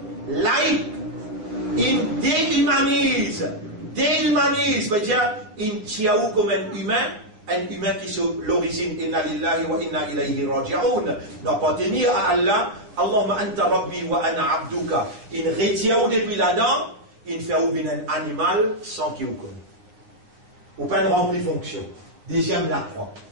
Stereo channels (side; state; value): left; late; 9.4 ms